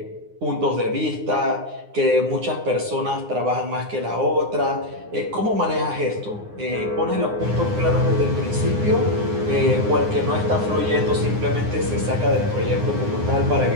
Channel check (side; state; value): left; late; 9.7 ms